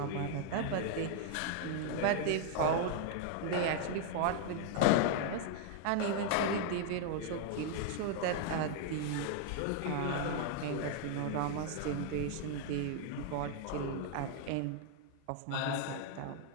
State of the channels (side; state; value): both; different; correlation 0.00